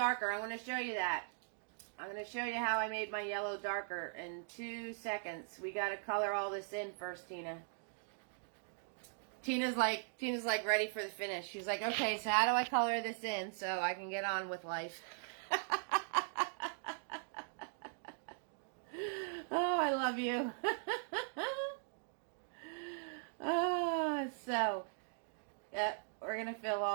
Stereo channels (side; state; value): left; silent; digital silence